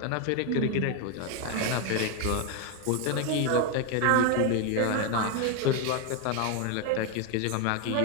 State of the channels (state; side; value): different; both; correlation 0.01